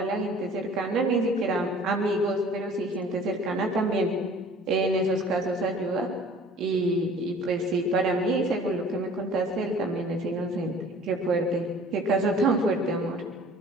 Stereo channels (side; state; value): both; normal; correlation 0.49